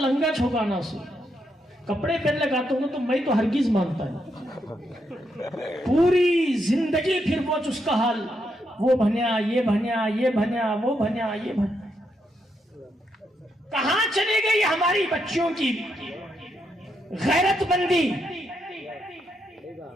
چھوکانا سو، کپڑے پہن لگاتا ہوں تو میں تو ہرگز مانتا ہے، پوری زندگی پھر وہ اس کا حال، وہ بھنیا یہ بھنیا یہ بھنیا وہ بھنیا یہ بھنیا۔ کہاں چلے گئی ہماری بچیوں کی غیرت مندی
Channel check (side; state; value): both; normal; correlation 0.80